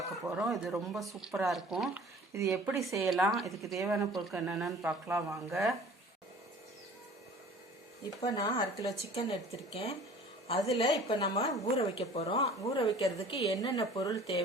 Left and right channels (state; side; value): normal; both; correlation 0.47